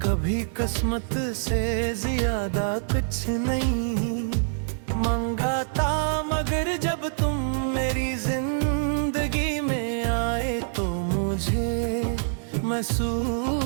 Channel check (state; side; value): silent; left; 61 dB below the other